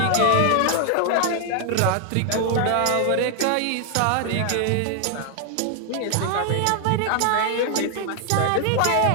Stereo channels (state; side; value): different; both; correlation 0.00